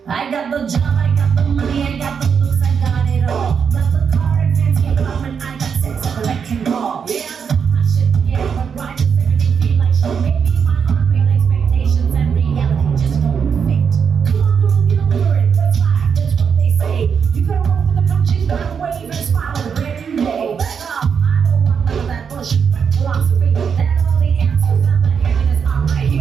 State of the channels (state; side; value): quieter; left; 6.7 dB